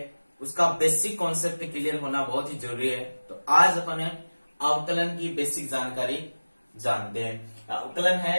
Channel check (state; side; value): inverted; both; correlation -1.00